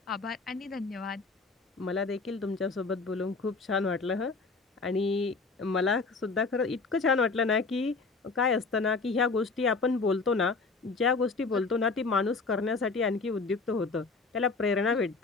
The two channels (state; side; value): quieter; right; 4.2 dB